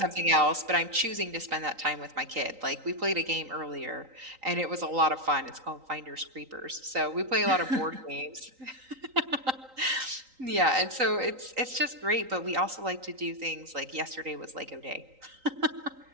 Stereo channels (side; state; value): left; late; 3.9 ms